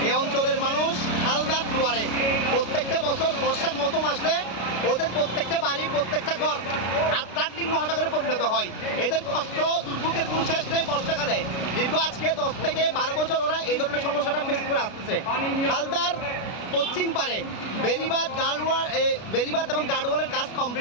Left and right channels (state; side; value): late; right; 33 ms